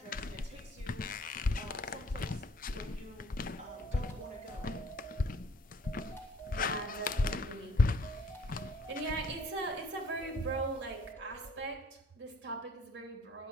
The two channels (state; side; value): normal; both; correlation 0.58